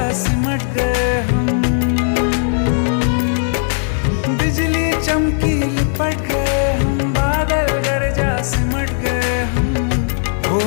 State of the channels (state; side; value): silent; right; digital silence